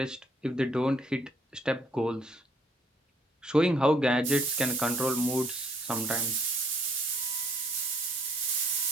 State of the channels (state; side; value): normal; both; correlation 0.63